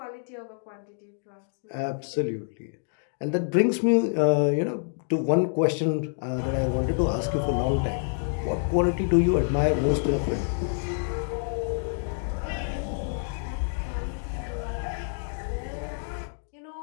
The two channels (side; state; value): right; silent; digital silence